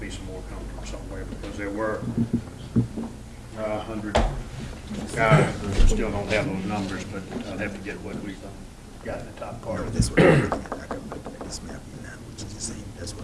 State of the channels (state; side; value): identical; both; correlation 1.00